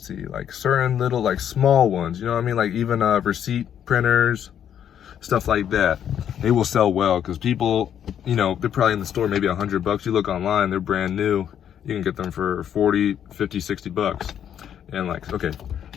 see, like certain little, like small ones, you know what I mean? Like even receipt printers, stuff like that. They will sell well because people, you know, they're probably in the store maybe $100. You look online, they're brand new. You can get them for 40, 50, 60 bucks. And like, okay,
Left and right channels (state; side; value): quieter; right; 9.4 dB